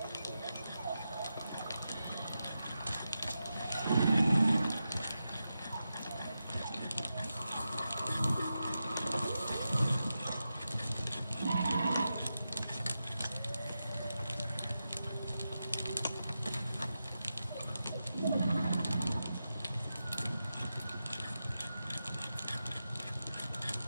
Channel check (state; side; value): inverted; both; correlation -0.90